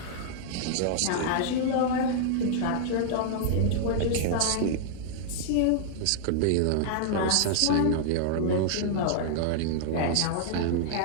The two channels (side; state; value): both; different; correlation -0.01